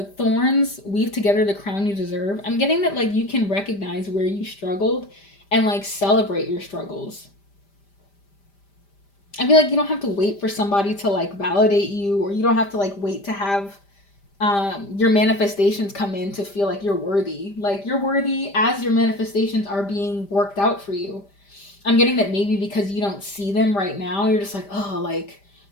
thorns weave together the crown you deserve, I'm getting that like you can recognize where you struggled and like celebrate your struggles. I feel like you don't have to wait for somebody to like validate you, or you don't have to like wait to have your manifestations come in to feel like you're worthy. Like you're worthy as your manifestations are being worked out for you. I'm getting that maybe because you don't see them right now, you're just like, oh, like,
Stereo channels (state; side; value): late; right; 5.0 ms